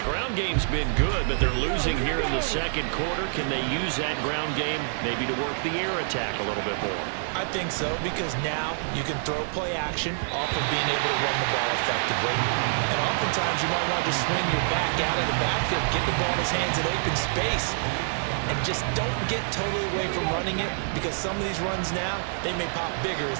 ground game's been good, but they're losing here in the second quarter. Can they use that ground game maybe to work the air attack a little bit more? I think so, because now you can throw play action off of being able to run the ball effectively. And oftentimes you might want to just swing your back out of the backfield, get the ball in his hands in open space, and just don't get totally away from running it, because some of these runs now, they may pop bigger as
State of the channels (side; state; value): left; silent; digital silence